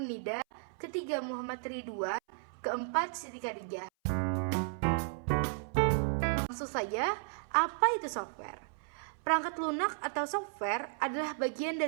Nida, ketiga Muhammad Ridwan, keempat Siti Khadijah. Langsung saja, apa itu software? Perangkat lunak atau software adalah bagian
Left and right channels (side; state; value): left; silent; 55 dB below the other